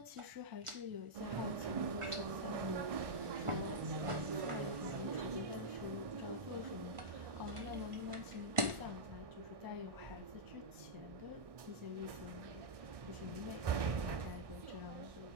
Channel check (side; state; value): left; late; 1.4 ms